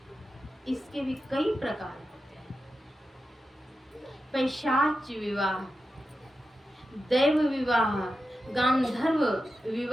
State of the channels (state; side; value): normal; both; correlation 0.90